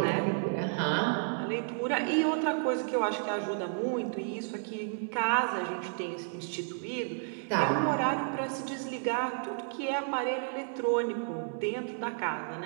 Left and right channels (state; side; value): silent; left; digital silence